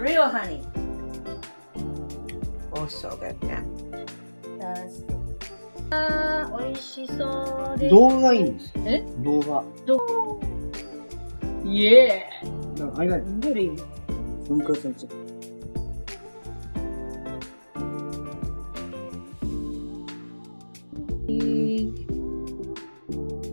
honey. Oh, so good. Yeah. 美味しそうです。動画がいいんです。え？動画。イエー。なんか間にどれ？分割されちゃった。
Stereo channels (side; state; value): both; inverted; correlation -1.00